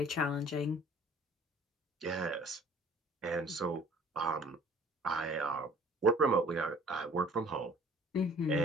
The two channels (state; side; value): normal; both; correlation 0.52